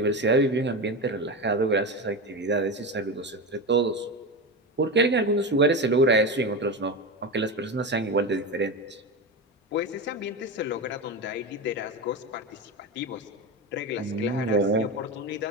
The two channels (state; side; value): normal; both; correlation 0.20